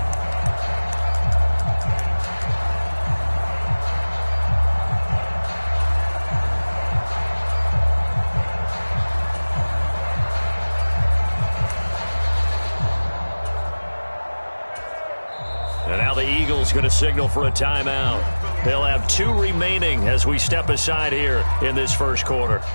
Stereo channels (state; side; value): inverted; both; correlation -1.00